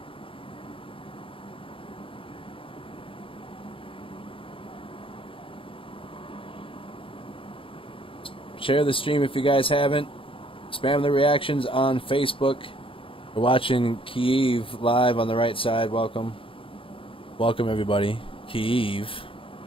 Share the stream if you guys haven't. Spam the reactions on Facebook. We're watching Kyiv live on the right side. Welcome. Welcome, everybody. Kyiv.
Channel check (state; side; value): late; right; 0.26 ms